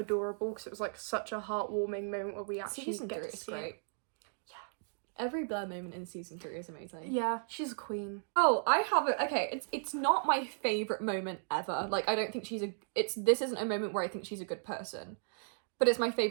because it was like such a heartwarming moment where we actually Season get 3 to is see great. it. Every Blair moment in season 3 is amazing. Yeah, she's a queen. Oh, I have it. Okay, it's not my favorite moment ever. Like, I don't think this isn't a moment where I think she's a good person, but it's my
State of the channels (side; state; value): left; silent; digital silence